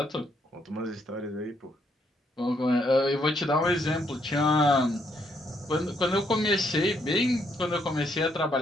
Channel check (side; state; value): both; normal; correlation 0.73